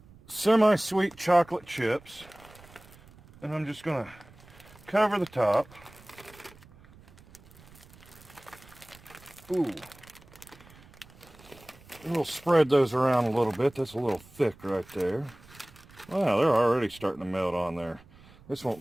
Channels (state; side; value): noise; right; rumble, 24 dB below the sound